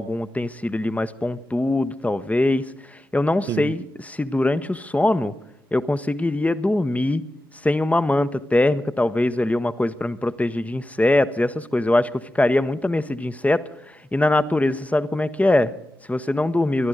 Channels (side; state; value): both; normal; correlation 0.93